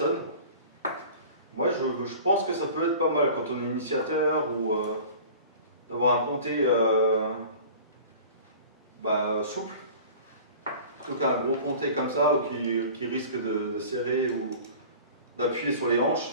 Moi, je pense que ça peut être pas mal quand on est initiateur ou d'avoir un ponté souple. Plutôt qu'un gros ponté comme ça qui risque de serrer ou d'appuyer sur les hanches.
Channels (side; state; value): both; inverted; correlation -0.41